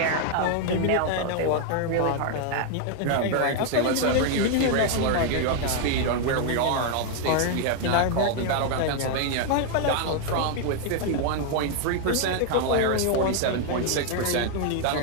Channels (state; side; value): different; both; correlation 0.00